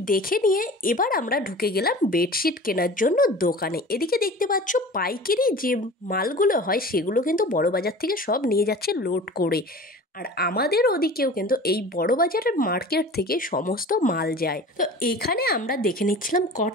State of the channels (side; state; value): both; normal; correlation 0.39